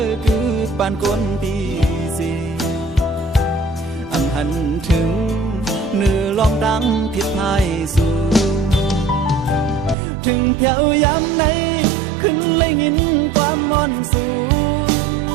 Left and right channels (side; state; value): left; drops out; at 10.0 s